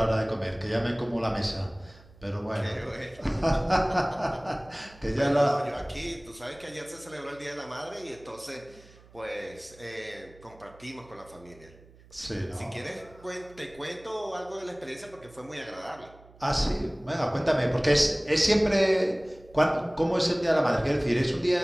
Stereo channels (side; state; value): right; noise; hum, 24 dB below the sound